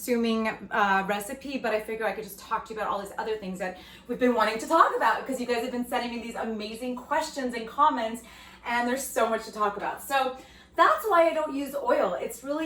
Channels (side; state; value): both; identical; correlation 1.00